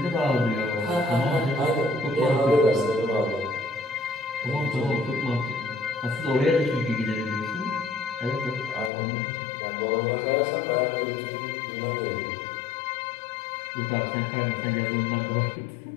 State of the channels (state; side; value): drops out; right; at 8.9 s